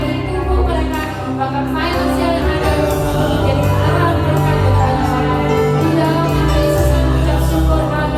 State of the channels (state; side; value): identical; both; correlation 1.00